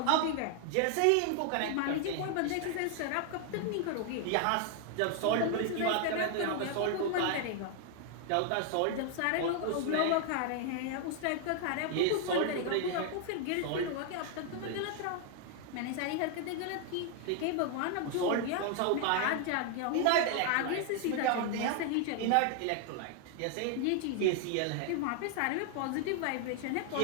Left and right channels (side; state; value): both; different; correlation 0.00